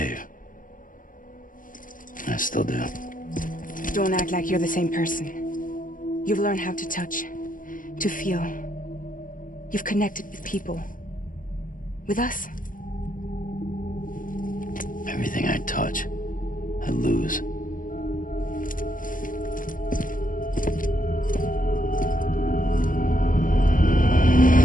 I still do. Don't act like you're the same person. You've learned how to touch, to feel. You've connected with people. With us. Everything I touch, I lose.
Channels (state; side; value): late; right; 0.39 ms